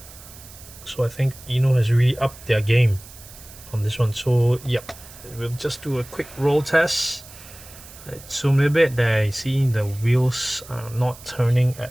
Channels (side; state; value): right; noise; hiss, 19 dB below the sound